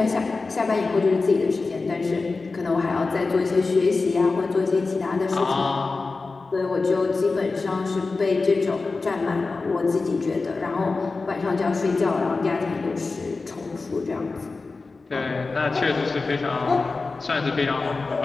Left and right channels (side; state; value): right; quieter; 3.9 dB